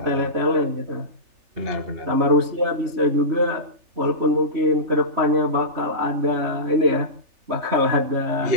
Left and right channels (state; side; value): late; left; 3.4 ms